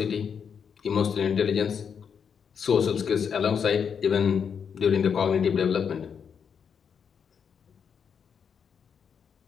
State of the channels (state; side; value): quieter; right; 7.0 dB